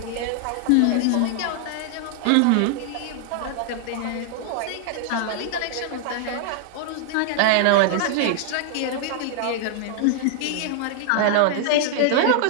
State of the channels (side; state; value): both; different; correlation 0.00